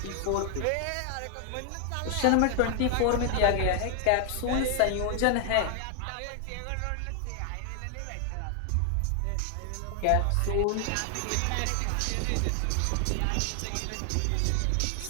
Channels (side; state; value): both; different; correlation 0.00